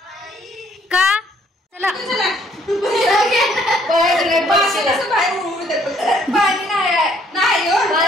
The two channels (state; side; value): normal; both; correlation 0.65